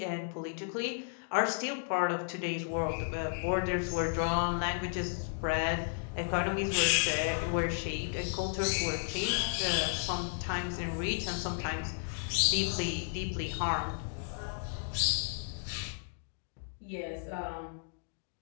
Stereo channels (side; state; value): right; silent; digital silence